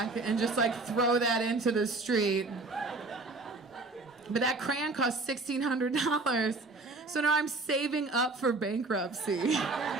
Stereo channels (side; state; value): left; quieter; 3.4 dB